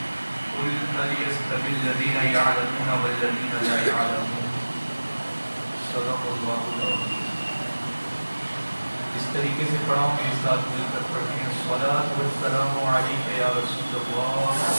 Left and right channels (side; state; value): both; inverted; correlation -1.00